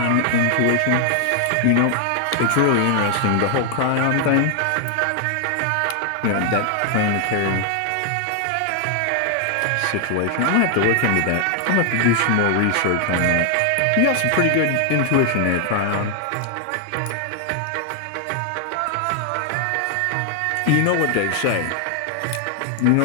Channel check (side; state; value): both; different; correlation 0.00